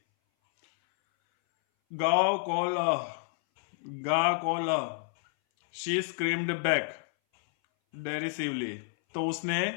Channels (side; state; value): right; silent; 58 dB below the other